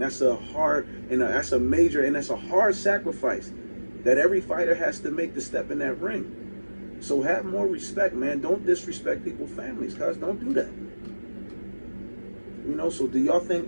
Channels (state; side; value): inverted; both; correlation -1.00